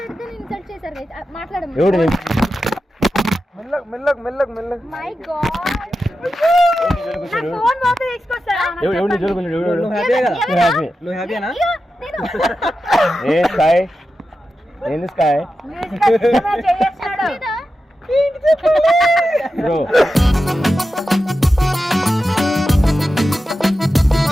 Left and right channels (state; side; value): normal; both; correlation 0.91